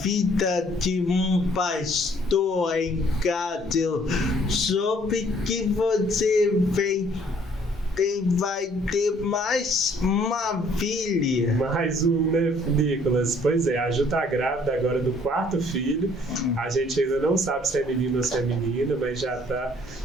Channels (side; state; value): both; normal; correlation 0.60